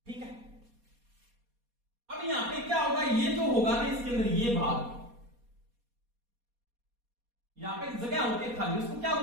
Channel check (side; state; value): left; late; 4.2 ms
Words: ठीक है। अब यहां पे क्या होगा, ये जो होगा ना इसके अंदर ये भाग, यहां पे जगह होती है खाली, उसको क्या